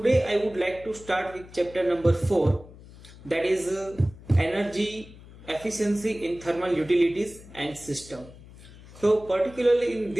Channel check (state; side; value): noise; left; hum, 20 dB below the sound